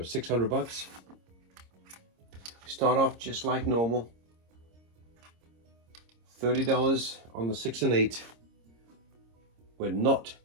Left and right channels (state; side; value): late; left; 26 ms